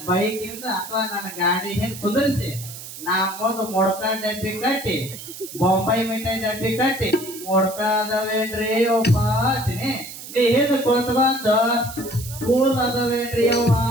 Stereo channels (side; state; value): right; noise; hiss, 12 dB below the sound